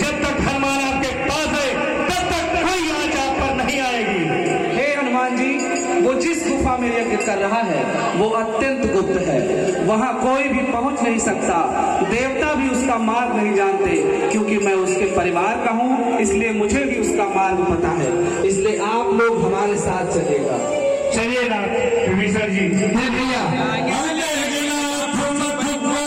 तक हनुमान आपके पास है तब तक कोई आंच आप पर नहीं आएगी। हे हनुमान जी, वो जिस गुफा में यज्ञ कर रहा है वो अत्यंत गुप्त है। वहां कोई भी पहुंच नहीं सकता। देवता भी उसका मार्ग नहीं जानते, क्योंकि मैं उसके परिवार का हूं, इसलिए मुझे भी उसका मार्ग पता है। इसलिए आप लोग हमारे साथ चलिएगा। चलिए ना विभीषण जी। भैया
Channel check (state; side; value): identical; both; correlation 1.00